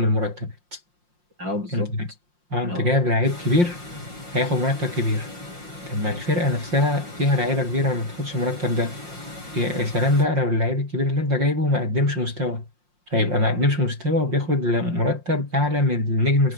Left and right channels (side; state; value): left; late; 5.6 ms